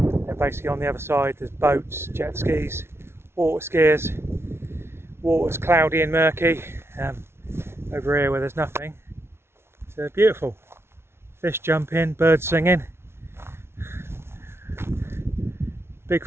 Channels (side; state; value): left; late; 0.12 ms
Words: basically on the other side there's boats, jet skis, water skiers. Water's cloudy and murky. Over here where there's nothing, it's beautiful. Fish jumping, birds singing.